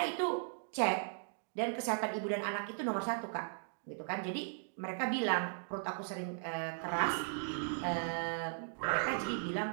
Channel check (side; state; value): left; silent; digital silence